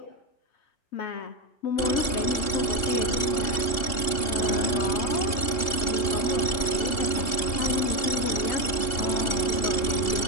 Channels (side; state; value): right; late; 2.8 ms